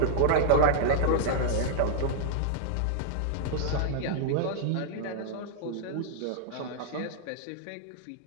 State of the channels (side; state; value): both; different; correlation -0.01